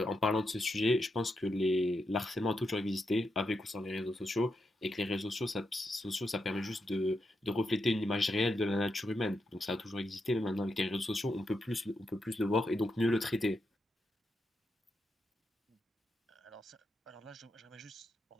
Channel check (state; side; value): normal; both; correlation 0.84